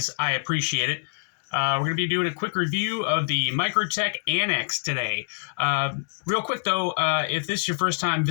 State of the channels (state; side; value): silent; right; digital silence